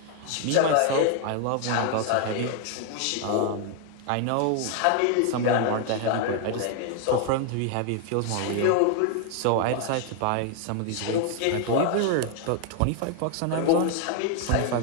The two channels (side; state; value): both; different; correlation 0.00